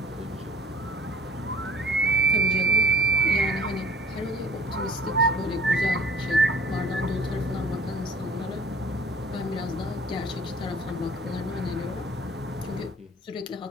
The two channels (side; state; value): both; normal; correlation 0.51